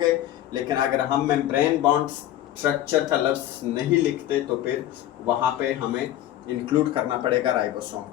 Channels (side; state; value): right; quieter; 13.0 dB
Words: लेकिन अगर हम मेम्ब्रेन बॉन्ड स्ट्रक्चर का लफ्ज़ नहीं लिखते तो फिर वहाँ पे हमें इंक्लूड करना पड़ेगा राइबोसोम